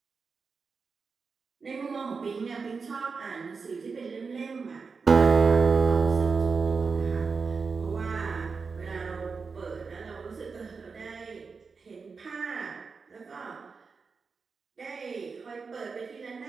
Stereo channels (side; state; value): left; quieter; 4.9 dB